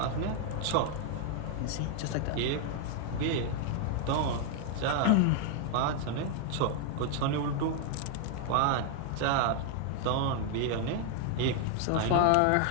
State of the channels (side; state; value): both; different; correlation 0.00